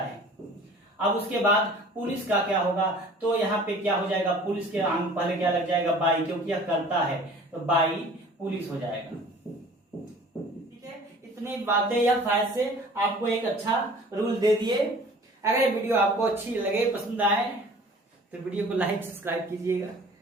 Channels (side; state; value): both; normal; correlation 0.47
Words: अब उसके बाद पुलिस का क्या होगा, तो यहाँ पे क्या हो जाएगा, पुलिस के पहले क्या लग जाएगा, बाई, क्योंकि यह करता है तो बाई पुलिस हो जाएगा। इतनी बातें या फायदे से आपको एक अच्छा रूल दे दिए। अगर ये वीडियो आपको अच्छी लगे, पसंद आए तो वीडियो को लाइक सब्सक्राइब कीजिएगा।